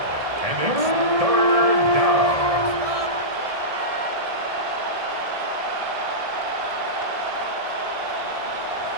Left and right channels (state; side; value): late; left; 1.7 ms